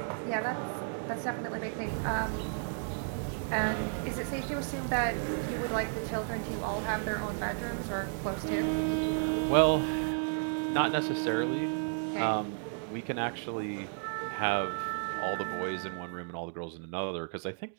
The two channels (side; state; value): left; silent; 56 dB below the other